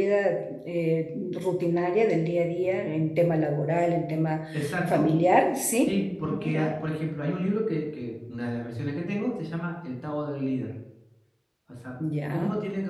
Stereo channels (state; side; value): identical; both; correlation 1.00